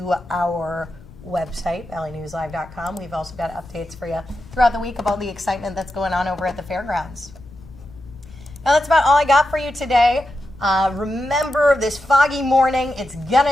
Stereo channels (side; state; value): left; noise; rumble, 20 dB below the sound